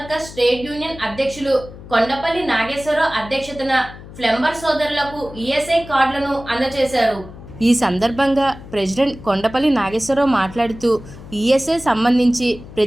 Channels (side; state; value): left; noise; hum, 16 dB below the sound